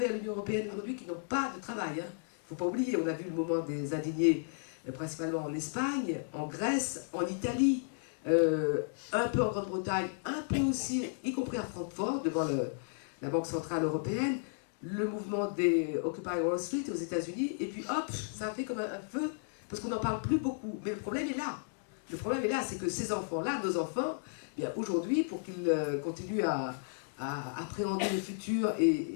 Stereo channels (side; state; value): right; silent; digital silence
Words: l'Union européenne aujourd'hui qui n'ont pas de travail. Il ne faut pas oublier, on a vu le moment des indignés principalement en Espagne, en Grèce, en Italie, un peu en Grande-Bretagne, un peu aussi, y compris à Francfort, devant la Banque Centrale Européenne, le mouvement des Occupy Wall Street aux États-Unis, et puis hop, ça a fait comme un feu, parce qu'on n'en parle plus beaucoup. Mais le problème est là. Le problème est là, c'est que ces enfants-là, nos enfants, bien aujourd'hui, pour qu'ils continuent à appréhender le futur, et